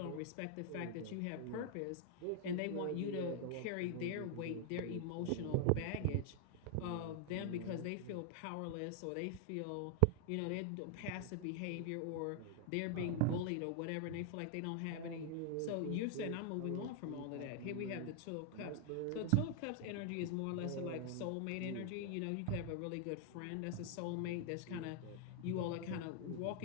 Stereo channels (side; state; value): both; different; correlation 0.00